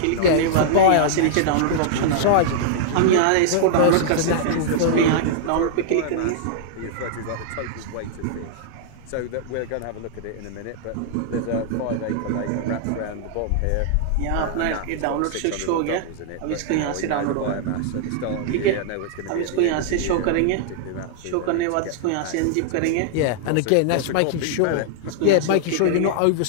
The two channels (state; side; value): different; both; correlation -0.01